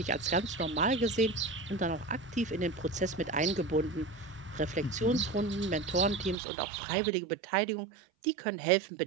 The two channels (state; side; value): drops out; left; at 6.4 s